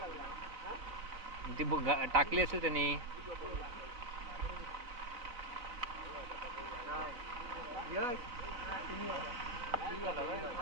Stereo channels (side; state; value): left; late; 4.0 ms